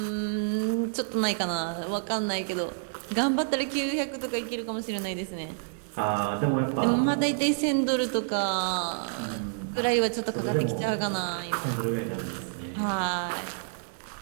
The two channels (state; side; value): silent; left; digital silence